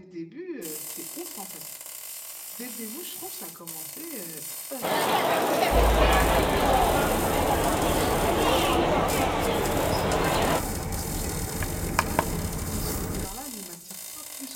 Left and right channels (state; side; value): identical; both; correlation 1.00